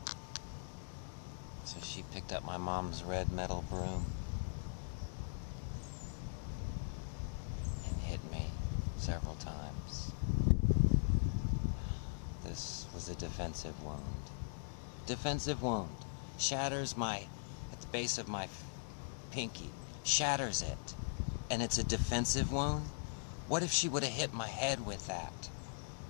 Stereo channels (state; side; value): silent; right; digital silence